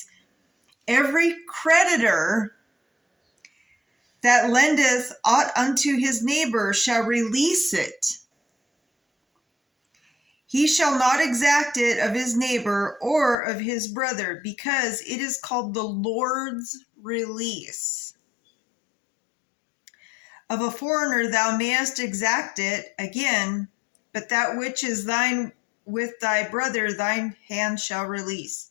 Every creditor that lendeth aught unto his neighbor shall release it. He shall not exact it of his neighbor or of his brother, because it is called the Lord's release. Of a foreigner thou mayest exact it again, but that which is thine with thy brother thine hand shall release,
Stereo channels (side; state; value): right; drops out; at 13.4 s